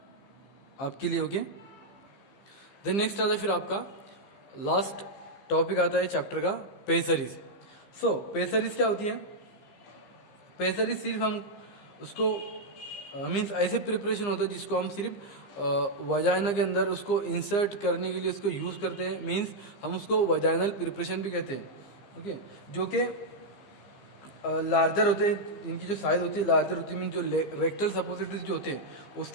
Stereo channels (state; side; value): late; right; 15 ms